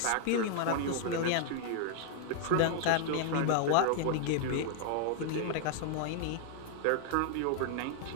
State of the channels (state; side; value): different; both; correlation 0.00